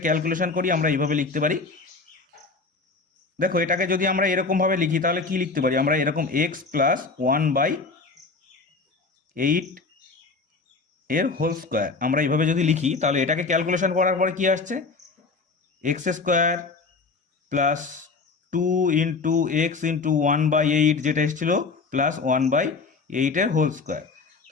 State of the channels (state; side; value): quieter; right; 4.2 dB